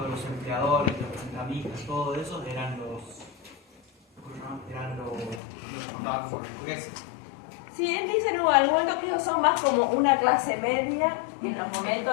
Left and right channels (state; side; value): drops out; right; at 5.4 s